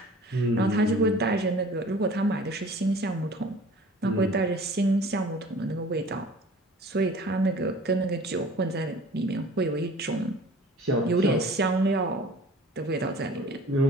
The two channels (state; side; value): normal; both; correlation 0.46